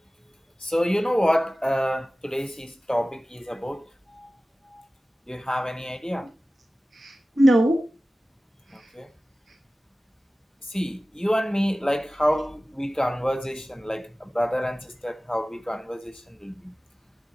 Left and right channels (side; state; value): both; normal; correlation 0.96